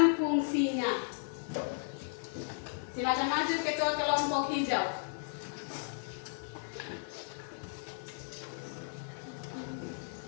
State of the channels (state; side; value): silent; right; digital silence